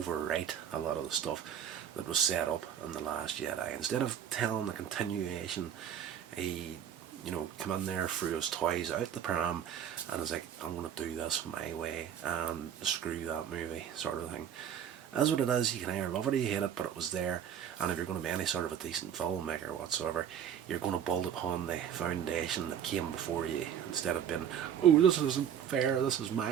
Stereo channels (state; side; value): quieter; left; 9.0 dB